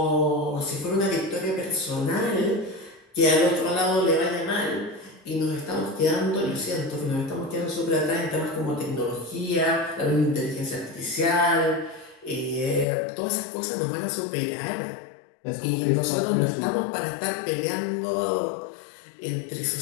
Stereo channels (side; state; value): right; drops out; at 12.9 s